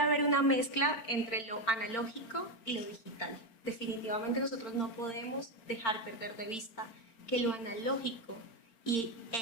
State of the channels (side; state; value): right; late; 4.4 ms